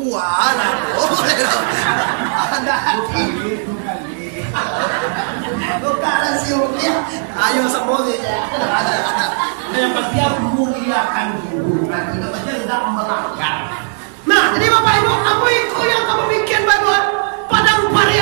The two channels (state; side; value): silent; left; 69 dB below the other